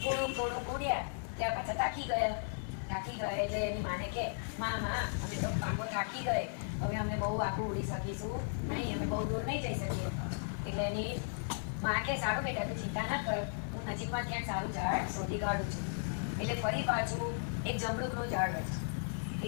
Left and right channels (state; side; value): silent; right; digital silence